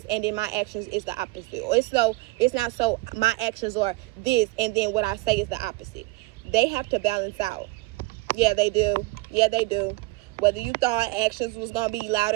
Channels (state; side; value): quieter; left; 23.2 dB